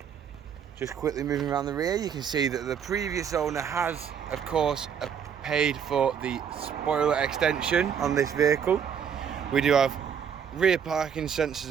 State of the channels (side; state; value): left; quieter; 7.7 dB